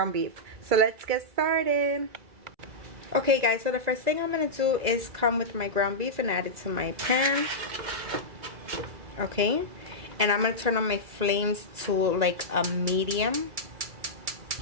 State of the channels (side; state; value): left; late; 2.1 ms